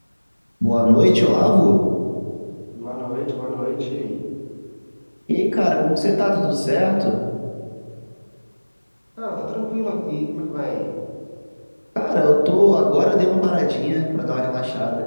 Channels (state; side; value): inverted; both; correlation -1.00